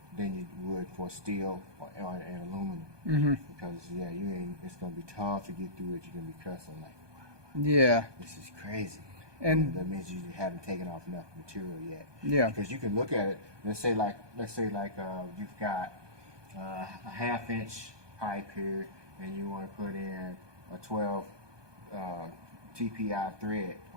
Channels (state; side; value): late; left; 1.2 ms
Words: than you would for steel or and aluminum. Because yeah, it's gonna be tough to get through it. You're gonna be cussing like, Yeah. this is crazy. And that means you haven't taken off enough material yet. Yeah. Because you can look at it. Let's say you've got a 1/2 inch pipe here, and you want to put in a 12 TPI thread